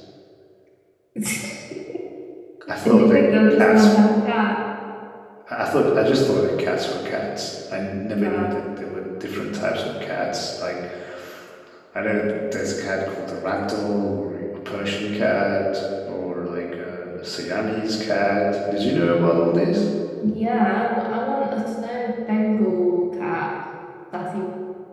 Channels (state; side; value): identical; both; correlation 1.00